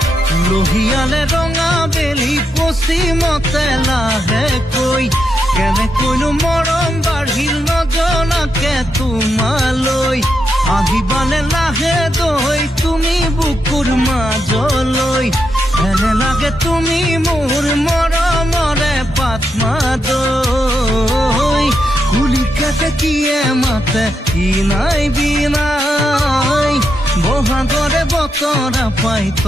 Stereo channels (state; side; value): normal; both; correlation 0.83